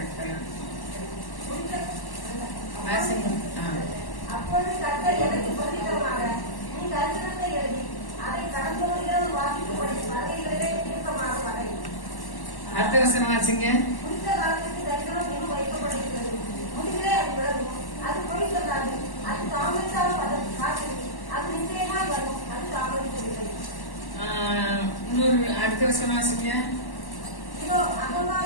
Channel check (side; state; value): right; late; 1.1 ms